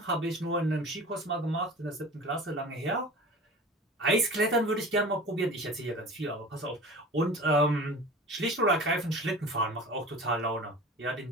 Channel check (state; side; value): normal; both; correlation 0.37